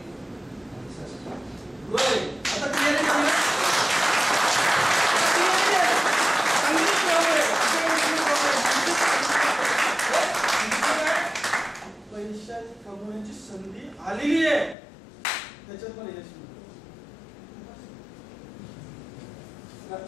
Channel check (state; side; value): drops out; right; at 14.8 s